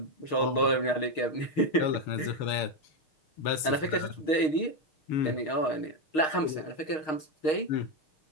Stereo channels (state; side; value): late; right; 6.4 ms